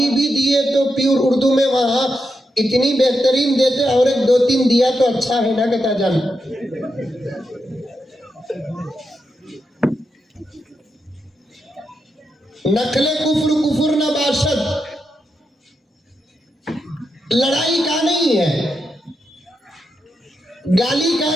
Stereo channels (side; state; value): both; normal; correlation 0.85